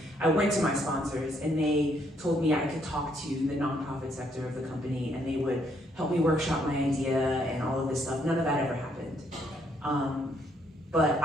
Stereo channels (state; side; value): normal; both; correlation 0.71